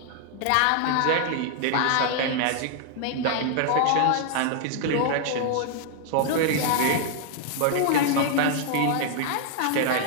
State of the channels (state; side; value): different; both; correlation 0.00